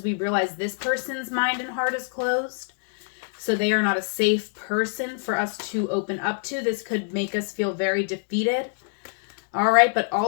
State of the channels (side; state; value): right; silent; digital silence